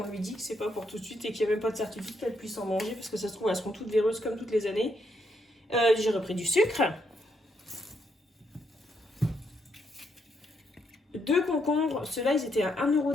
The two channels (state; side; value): normal; both; correlation 0.77